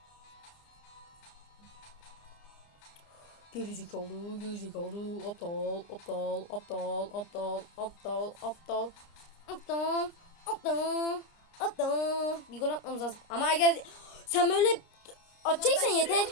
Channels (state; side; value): late; right; 29 ms